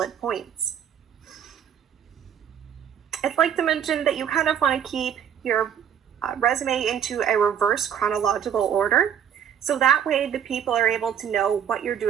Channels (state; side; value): quieter; left; 8.9 dB